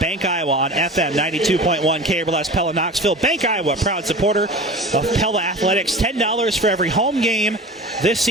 Iowa on FM 92.1 KRLS Pella Knoxville. Bank Iowa, proud supporter of Pella Athletics. $10 for every home game this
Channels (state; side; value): normal; both; correlation 0.35